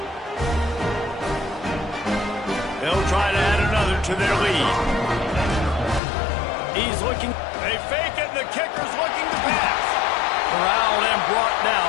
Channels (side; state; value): right; drops out; at 6.0 s